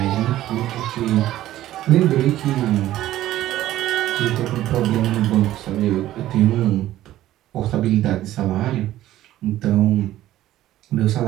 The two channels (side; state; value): left; quieter; 14.1 dB